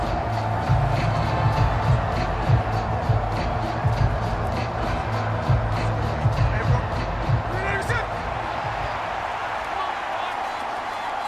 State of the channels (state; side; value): identical; both; correlation 1.00